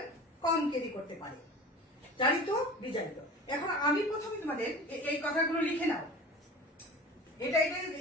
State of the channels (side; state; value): both; normal; correlation 0.37